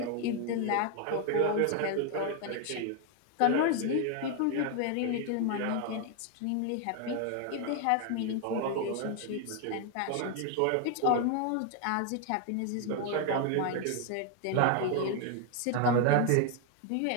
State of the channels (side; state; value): both; different; correlation 0.01